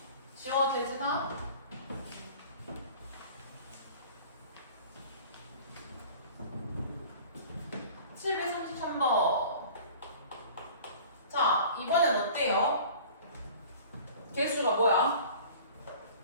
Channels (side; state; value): both; inverted; correlation -0.44